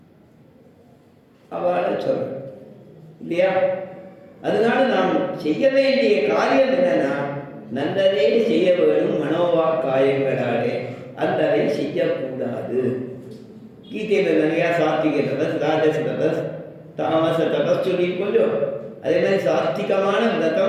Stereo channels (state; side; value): identical; both; correlation 1.00